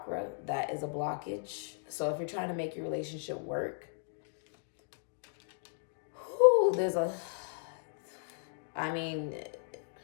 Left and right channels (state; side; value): silent; right; digital silence